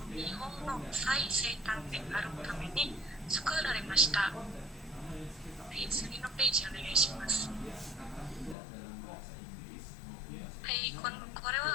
日本の最西端であるために作られました。次のページお願いします。これ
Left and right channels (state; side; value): drops out; right; at 8.6 s